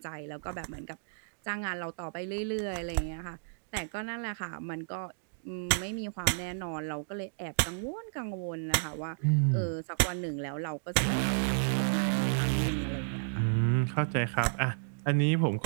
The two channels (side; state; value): left; silent; digital silence